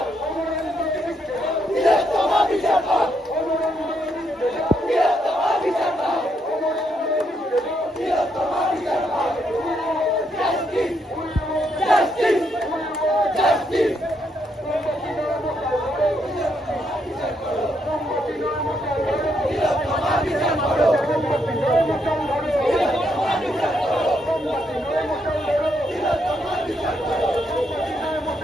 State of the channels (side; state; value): both; normal; correlation 0.76